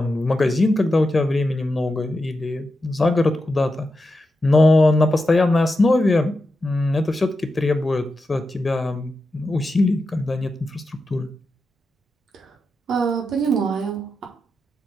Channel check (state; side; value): normal; both; correlation 0.89